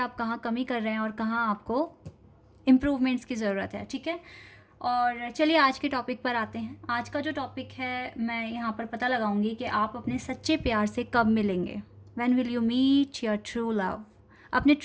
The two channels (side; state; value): both; identical; correlation 1.00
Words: कहाँ कमी कर रहे हैं और कहाँ आपको इम्प्रूवमेंट्स की ज़रूरत है। ठीक है, और चलिए आज के टॉपिक पर आते हैं। आज का जो टॉपिक है, मैं यहाँ पर पता लगाऊंगी कि आप अपने सच्चे प्यार से कब मिलेंगे। When will you meet your true love. अपने